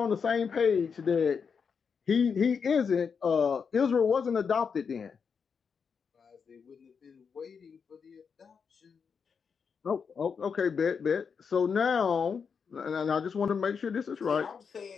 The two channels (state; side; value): quieter; right; 6.1 dB